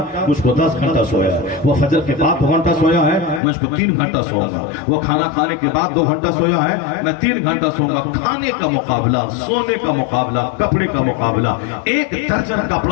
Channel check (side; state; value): right; drops out; at 3.4 s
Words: مجھ کو 10 گھنٹہ سویا ہے. وہ فجر کے بعد 2 گھنٹہ سویا ہے, مجھ کو 3 گھنٹہ سوؤں گا. وہ کھانا کھانے کے بعد 2 گھنٹہ سویا ہے, میں 3 گھنٹہ سوؤں گا. کھانے کا مقابلہ, سونے کا مقابلہ, کپڑے کا مقابلہ. 1 درجن